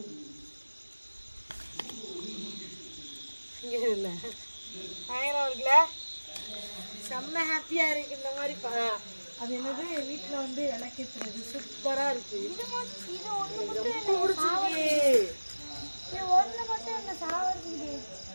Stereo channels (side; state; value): both; inverted; correlation -1.00